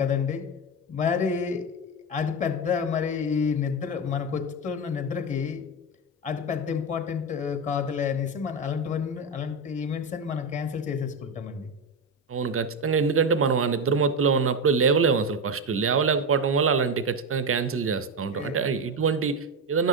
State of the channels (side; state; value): both; normal; correlation 0.14